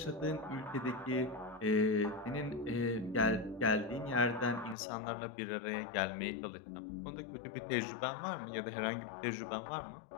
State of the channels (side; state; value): right; drops out; at 4.8 s